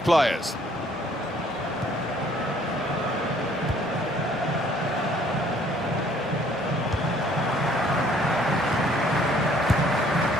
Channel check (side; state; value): both; normal; correlation 0.60